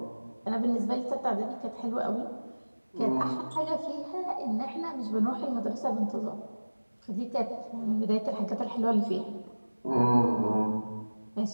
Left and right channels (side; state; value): both; inverted; correlation -1.00